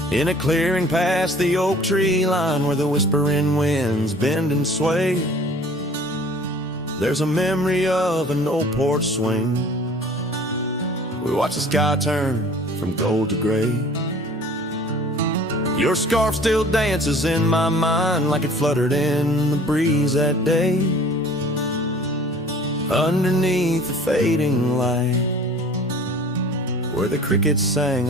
In a clearing past the oak tree line, where the whispering winds bend and sway, there's a memory of an old porch swing. We watch the sky turn from gold to gray. Your scarf still dances in my mind like it fluttered in the breeze that day. underneath the fading light, where the crickets sang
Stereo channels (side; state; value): both; normal; correlation 0.49